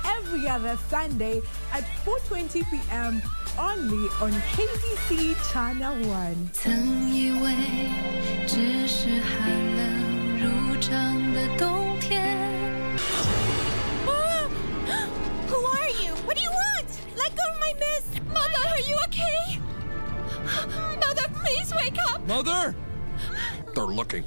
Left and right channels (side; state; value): both; inverted; correlation -1.00